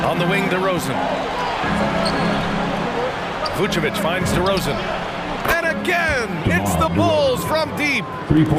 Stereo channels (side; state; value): both; identical; correlation 1.00